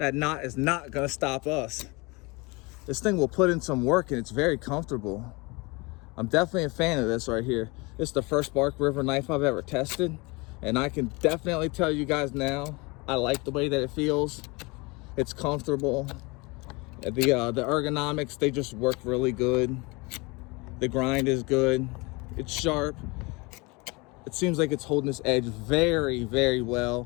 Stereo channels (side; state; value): right; quieter; 26.5 dB